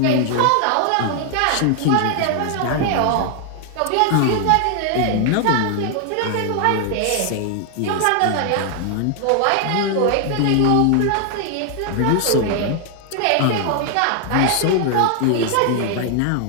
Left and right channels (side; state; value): both; different; correlation 0.00